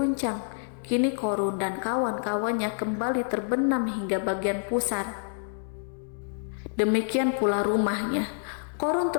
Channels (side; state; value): right; silent; 60 dB below the other